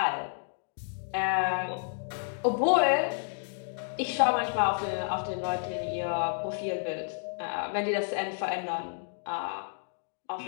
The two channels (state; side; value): silent; right; digital silence